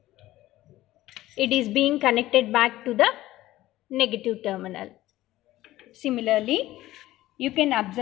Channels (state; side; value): quieter; right; 15.9 dB